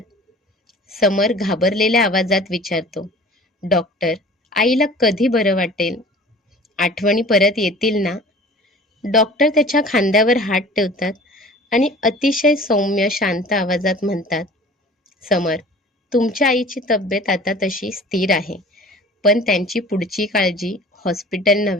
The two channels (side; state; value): both; normal; correlation 0.45